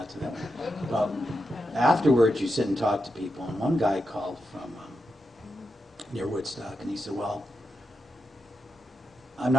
to that one. But afterwards, you sit and talk to people. And one guy called from near Woodstock, and he said, well, I'm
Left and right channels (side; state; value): both; normal; correlation 0.87